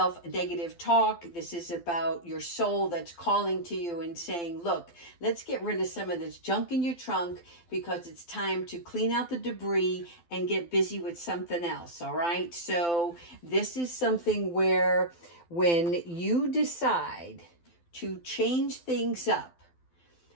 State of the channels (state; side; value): late; right; 12 ms